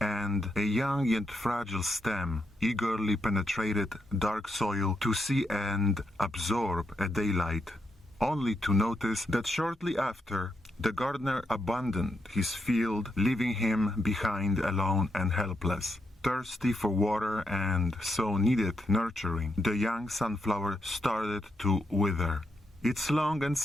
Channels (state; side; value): normal; both; correlation 0.82